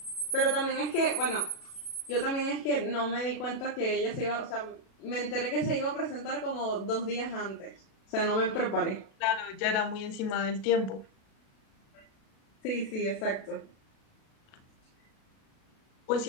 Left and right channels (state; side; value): late; right; 37 ms